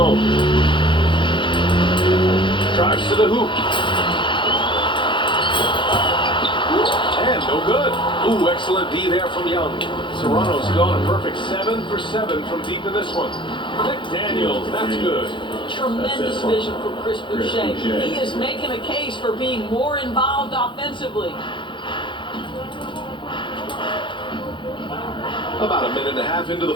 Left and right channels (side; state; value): right; late; 0.24 ms